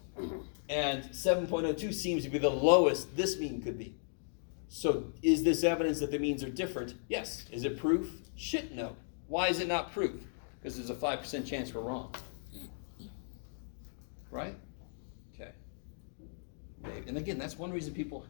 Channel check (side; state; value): right; silent; digital silence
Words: And 7.02 seems to be the lowest this mean could be. So is this evidence that the means are different? Yes. Is it proof? Shit, no. Why is it not proof? Because there's a 5% chance we're wrong. Right? Okay. And again, that's one reason people